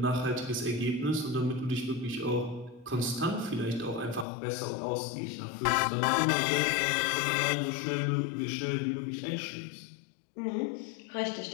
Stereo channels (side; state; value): right; drops out; at 4.2 s